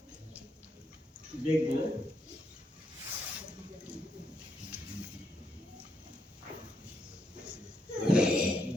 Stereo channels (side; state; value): both; normal; correlation 0.78